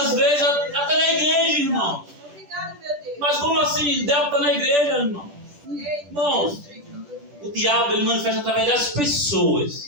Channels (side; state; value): left; late; 10 ms